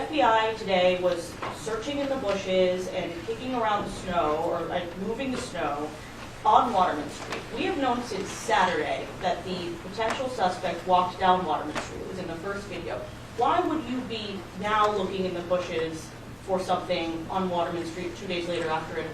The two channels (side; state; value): both; identical; correlation 1.00